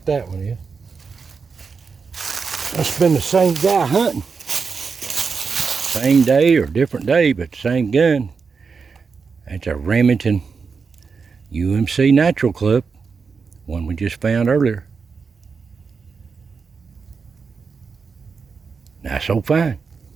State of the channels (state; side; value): quieter; left; 5.3 dB